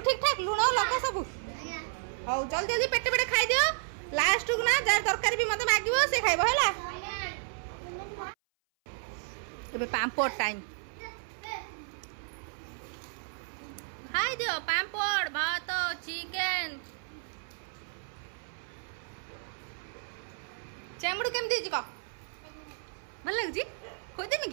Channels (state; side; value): silent; left; 56 dB below the other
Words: ठीक ठाक लुण लका सब ହଉ ଜଲ୍ଦି ଜଲ୍ଦି ପେଟେ ପେଟେ ଖାଇଦିଅ ଲାଷ୍ଟକୁ ନା ଯାର ତରକାରୀ ବି ମତେ ମାଗିବ ସେ ଖାଇବ ହେଲା। ଏବେ ପାମ୍ପଡ଼ ଟାଇମ୍ ଖାଇଦିଅ ପାମ୍ପଡ଼ ଭାତ ଚିକେନ। ଚେଙ୍ଗୁଡି କେମିତି ହେଇଛି କହ ଭଲ ଲାଗୁଛି ଖୋଇଦେମି